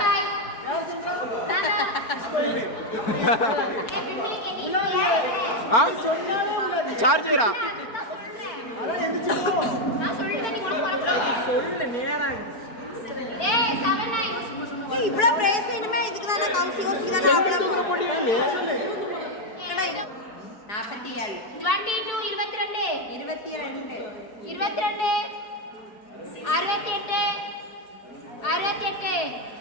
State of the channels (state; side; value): late; right; 4.7 ms